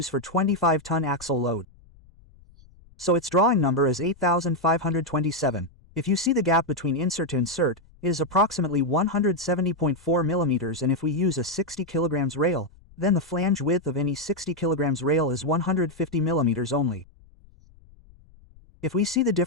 for 25-ton axle load. So its drawing number is 8527. If you see the gap between insert to insert, it is approximately 170.4 millimeters, and if we use a 60 kilograms rail, then the flange width of any 60 kilograms rail is 150 millimeters only. If we see the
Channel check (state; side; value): noise; left; rumble, 26 dB below the sound